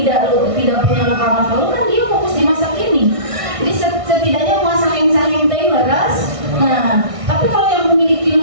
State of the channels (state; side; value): late; left; 1.6 ms